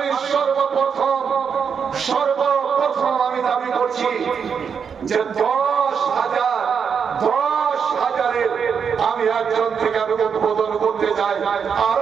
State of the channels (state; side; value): quieter; left; 6.7 dB